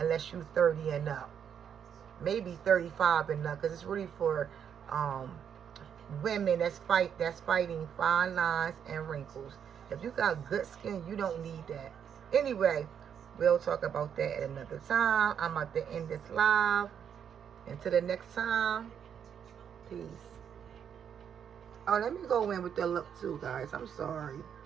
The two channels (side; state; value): left; quieter; 8.1 dB